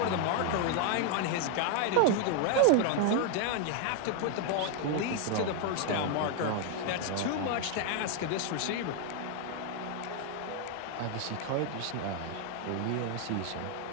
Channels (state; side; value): different; both; correlation 0.00